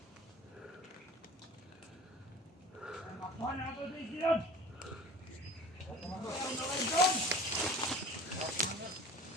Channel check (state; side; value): normal; both; correlation 0.41